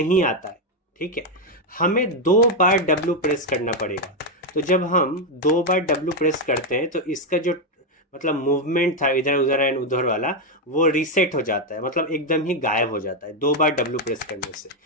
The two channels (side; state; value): both; normal; correlation 0.04